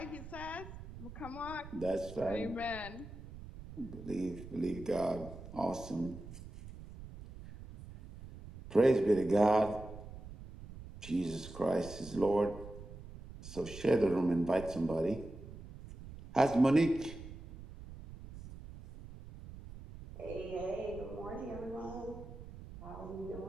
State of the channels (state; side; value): noise; right; rumble, 14 dB below the sound